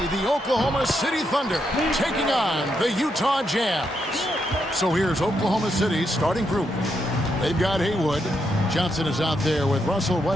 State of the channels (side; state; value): both; normal; correlation 0.80